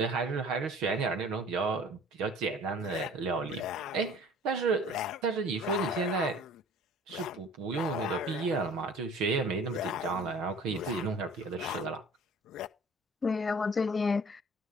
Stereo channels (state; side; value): normal; both; correlation 0.48